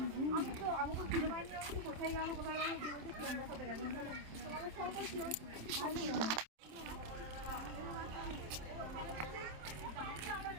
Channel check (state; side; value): late; left; 27 ms